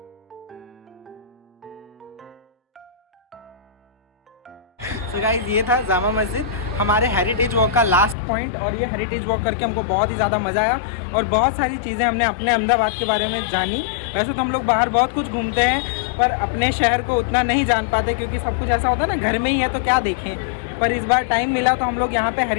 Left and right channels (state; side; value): drops out; right; at 8.2 s